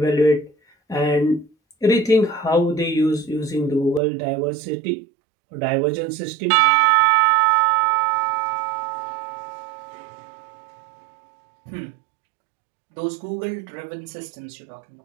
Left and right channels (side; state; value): left; drops out; at 4.0 s